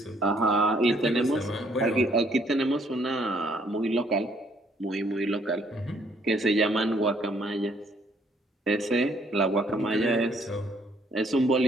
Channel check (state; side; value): normal; both; correlation 0.66